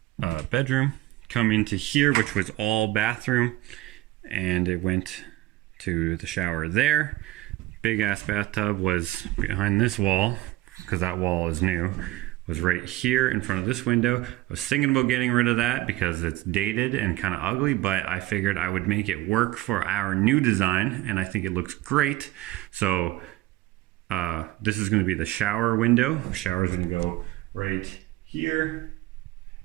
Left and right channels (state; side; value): quieter; left; 17.6 dB